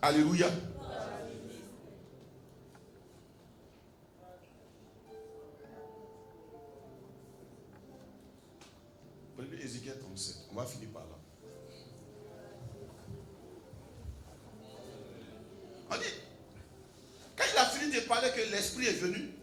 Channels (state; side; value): identical; both; correlation 1.00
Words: Alléluia. Prenez Ézéchiel 37. On va finir par là. On dit, quand il a fini de parler que l'esprit est venu,